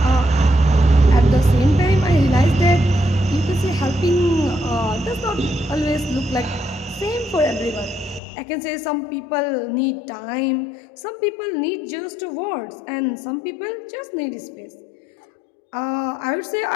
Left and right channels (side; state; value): right; drops out; at 8.2 s